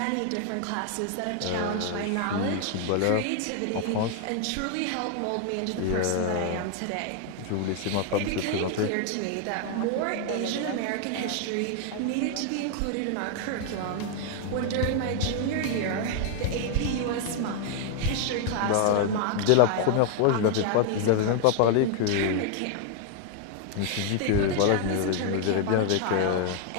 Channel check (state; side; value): different; both; correlation 0.00